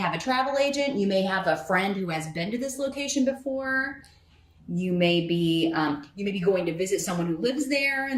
a travel agent. You may have a friend who has been to this location before. You may be going to visit someone who lives there,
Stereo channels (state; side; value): identical; both; correlation 1.00